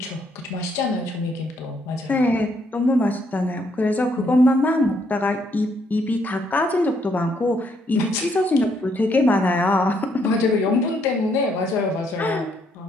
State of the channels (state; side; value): normal; both; correlation 0.71